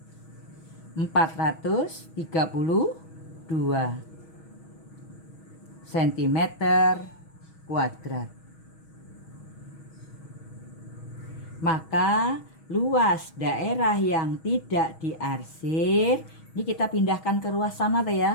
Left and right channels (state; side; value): late; right; 6.3 ms